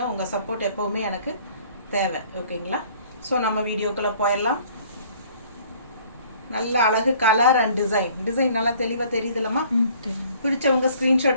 உங்கள் சப்போர்ட் எப்போவுமே எனக்கு தேவை ஓகேங்களா. ஸோ நம்ம வீடியோக்குள்ளே போயிடலாம். நல்ல அழகு கலர் அண்ட் டிசைன் நல்லா தெளிவாக தெரியுதுல்லம்மா. பிடிச்சவங்க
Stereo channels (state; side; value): inverted; both; correlation -0.55